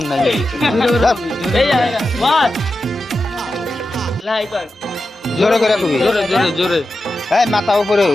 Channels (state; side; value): normal; both; correlation 0.91